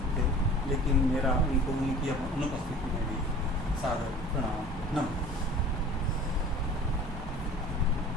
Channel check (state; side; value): normal; both; correlation 0.44